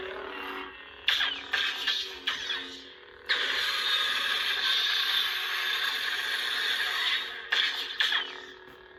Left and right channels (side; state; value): both; identical; correlation 1.00